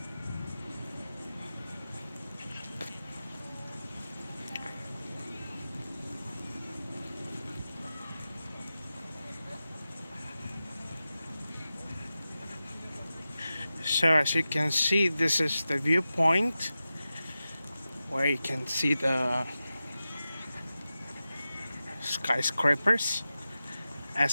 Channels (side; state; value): both; inverted; correlation -0.93